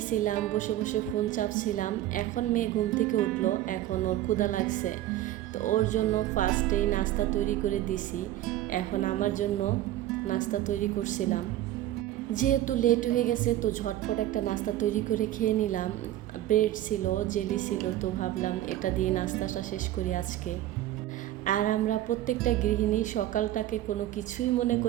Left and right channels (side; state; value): left; quieter; 13.9 dB